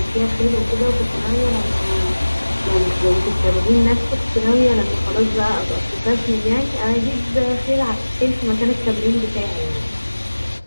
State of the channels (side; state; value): both; inverted; correlation -1.00